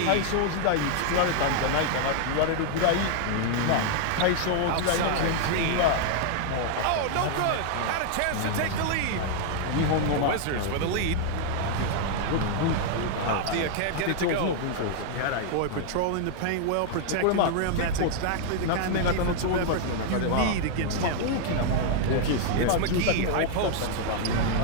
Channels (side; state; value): both; different; correlation 0.00